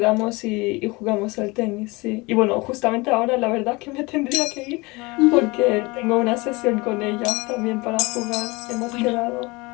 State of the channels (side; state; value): right; quieter; 24.4 dB